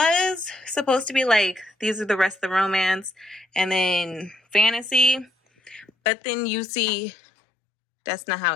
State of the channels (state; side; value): drops out; right; at 5.9 s